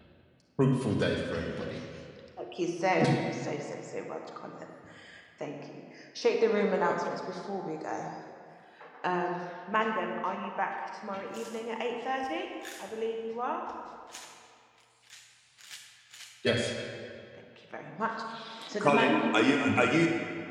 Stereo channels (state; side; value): identical; both; correlation 1.00